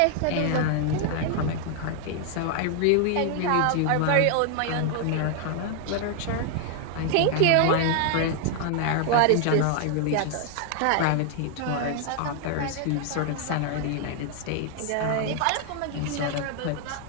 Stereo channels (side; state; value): both; different; correlation 0.00